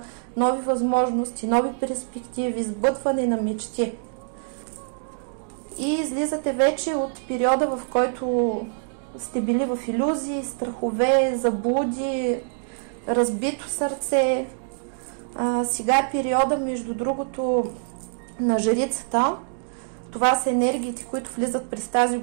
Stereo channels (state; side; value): silent; left; digital silence